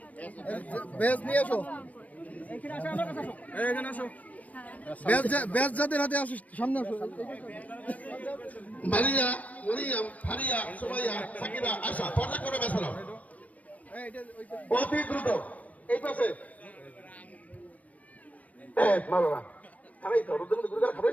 যাদের হাতে আসো, সামনে আসো। মারিয়া, মরিয়াম, ফারিয়া, সুমাইয়া, সাকিরা, আশা পর্দা করে বেসানো অতি দ্রুত। এই পাশে মারো না, খারাই তো রুদ্র গুরুদার খারাই,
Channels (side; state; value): right; late; 0.070 ms